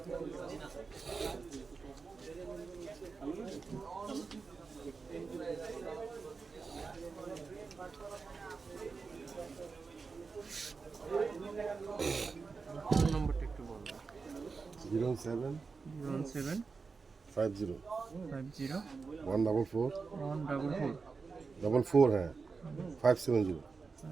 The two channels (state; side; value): quieter; left; 4.7 dB